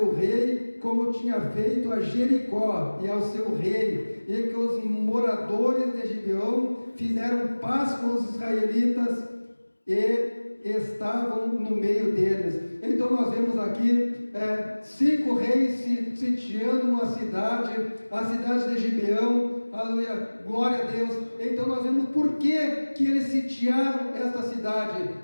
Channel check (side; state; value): both; inverted; correlation -1.00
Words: rei como tinha feito a Jericó e ao seu rei, e que os moradores de Gibeão fizeram paz com os israelitas e estavam no meio deles. Então nós vemos aqui 5 reis sitiando uma cidade, a cidade de Gibeão, aleluia, glória a Deus. Então nós vemos por que eles sitiaram esta cidade,